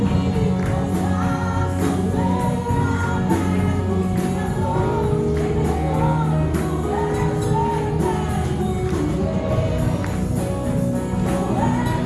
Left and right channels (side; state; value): both; identical; correlation 1.00